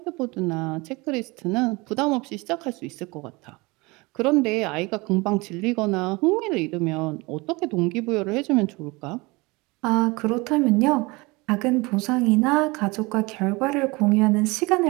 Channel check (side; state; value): left; quieter; 24.6 dB